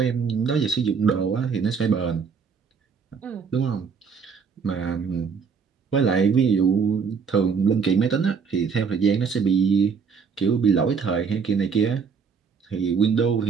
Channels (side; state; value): left; quieter; 5.8 dB